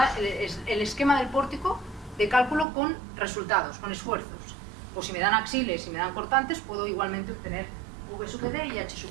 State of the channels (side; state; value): left; drops out; at 2.7 s